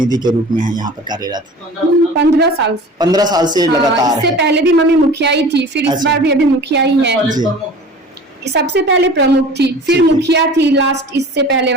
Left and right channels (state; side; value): normal; both; correlation 0.41